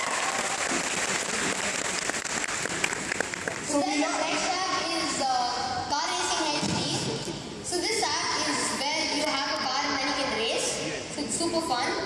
So then the next app is Car Racing HD. So this app is where you have a car and then you can race. So it's super fun.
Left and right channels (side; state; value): both; identical; correlation 1.00